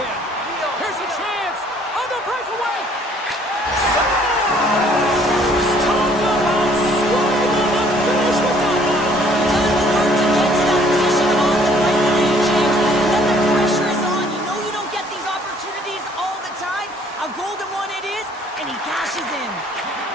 Here's a chance on the breakaway. Scores! Talk about swing on the finish with that one. Done the work to get to that position on the breakaway, James. When the pressure is on, you know you don't get these opportunities all the time. A golden one it is, and he cashes in.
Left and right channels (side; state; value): both; normal; correlation 0.60